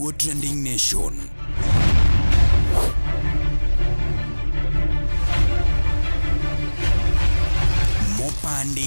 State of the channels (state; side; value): inverted; both; correlation -1.00